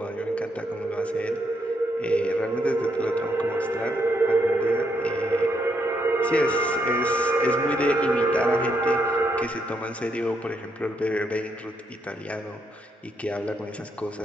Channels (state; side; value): normal; both; correlation 0.76